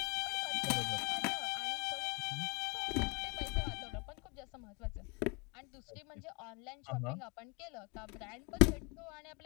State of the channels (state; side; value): quieter; right; 29.1 dB